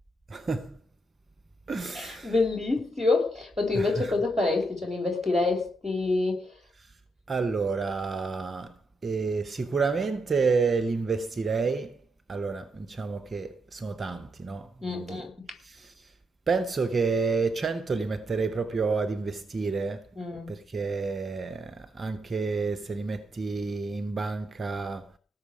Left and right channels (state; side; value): normal; both; correlation 0.80